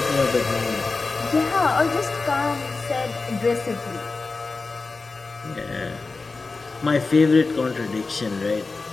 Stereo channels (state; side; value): quieter; right; 3.9 dB